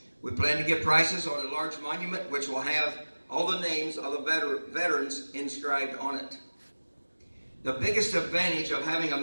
We plan to get prices on a large monument which will have all the names of the veterans inscribed on it. The biggest advantage of having a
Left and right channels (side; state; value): both; inverted; correlation -1.00